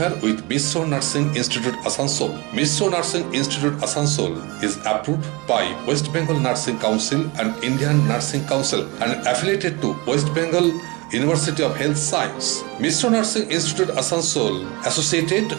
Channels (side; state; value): left; quieter; 25.9 dB